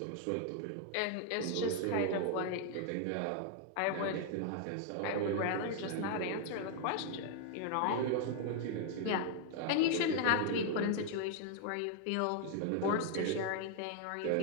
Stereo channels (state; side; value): different; both; correlation 0.00